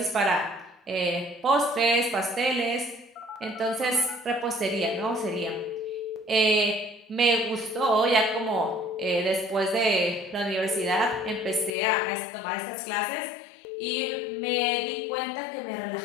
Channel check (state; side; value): drops out; right; at 11.7 s